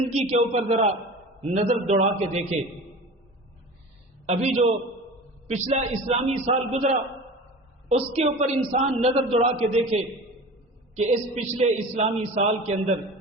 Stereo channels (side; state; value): both; normal; correlation 0.35